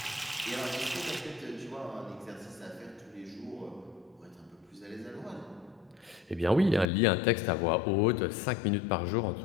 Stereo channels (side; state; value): right; drops out; at 6.9 s